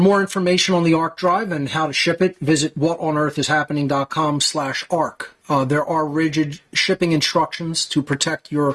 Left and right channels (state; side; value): identical; both; correlation 1.00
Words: information on the ARC drive and how to ship it, visit whatonearthishappening.com/ARC. There are rigid shipping instructions to protect